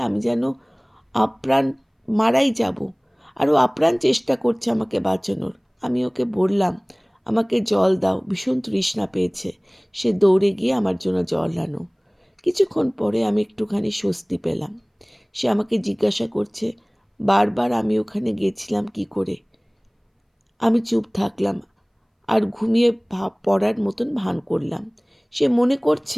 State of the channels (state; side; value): identical; both; correlation 1.00